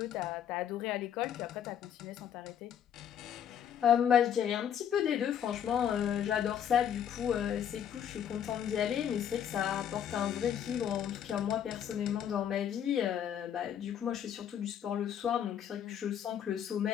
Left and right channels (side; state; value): right; quieter; 9.2 dB